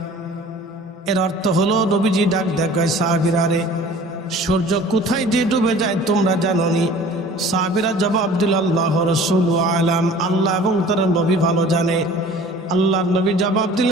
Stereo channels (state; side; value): normal; both; correlation 0.46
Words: এর অর্থ হলো নবীজি ডাক দেখায় সাহাবীরা, রে সূর্য কোথায় যে ডুবে যায় তোমরা জানো নি? সাহাবীরা জবাব দিল, আল্লাহ রাসূলু আলাম, আল্লাহ এবং তার নবী ভালো জানে। আল্লাহর নবী জবাব